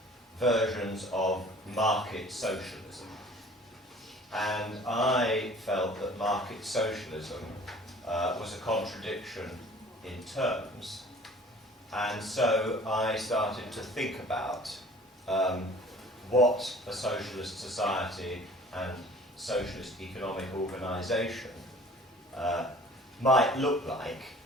versions of market socialism. And I felt that market socialism was a contradiction in terms, and so I started to think about what a socialist society and socialist economic organisation might look like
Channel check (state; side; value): normal; both; correlation 0.49